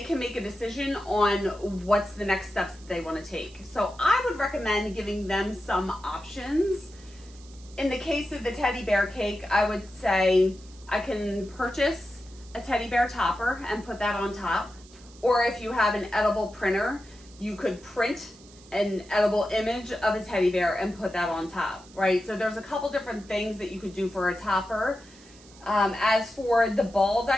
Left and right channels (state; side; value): noise; right; hiss, 23 dB below the sound